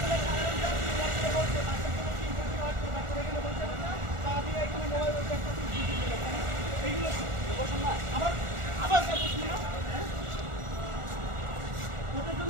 সাধারণ যাত্রী, এরা আসলে বলছে বাসের জন্য কি ইম্পর্টেন্ট হয় তো বাচ্চারা এখানে বলছে না, তা দিয়ে এখানে মোবাইল একটা এইগুলো বসুন না। আবার আবার বসুন না। ওটার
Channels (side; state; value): left; late; 1.4 ms